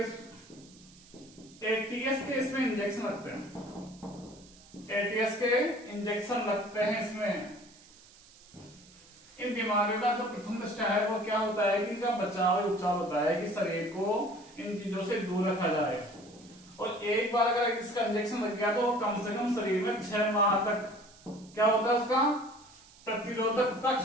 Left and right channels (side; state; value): right; noise; hiss, 24 dB below the sound